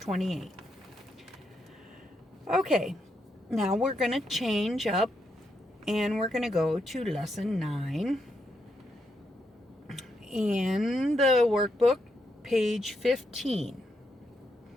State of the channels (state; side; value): normal; both; correlation 0.80